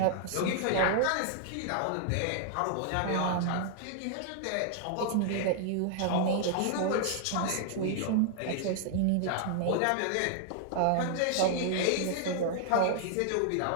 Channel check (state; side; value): different; both; correlation 0.00